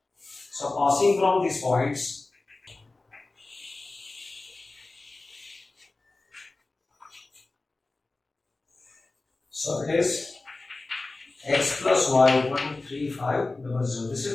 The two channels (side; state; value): right; quieter; 3.3 dB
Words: So passing from these points, so it is x plus y equal to 3500. This